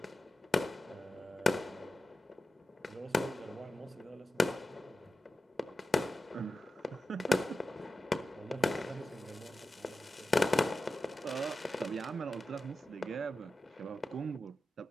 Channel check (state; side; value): normal; both; correlation 0.93